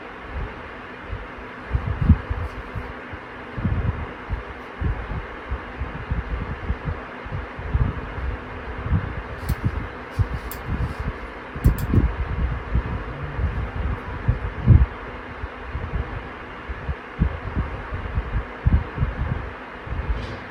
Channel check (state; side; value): identical; both; correlation 1.00